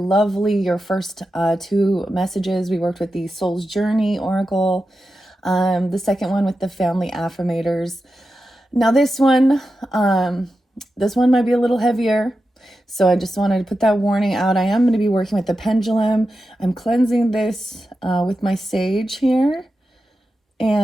Your first two messages, we worked with the Soul's Journey Oracle. The second one with the Family Affirmators. Now this one might be a little heavier. So I just wanted to put that warning out. I am going to be working with the pendulum. I'm cleansing this with my sage here.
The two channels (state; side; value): normal; both; correlation 0.91